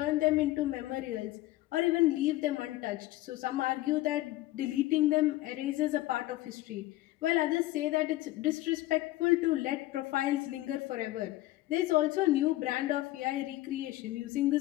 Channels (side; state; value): right; quieter; 17.0 dB